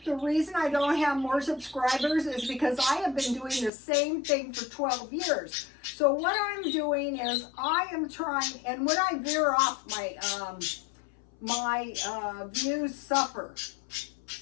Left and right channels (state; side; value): drops out; right; at 3.7 s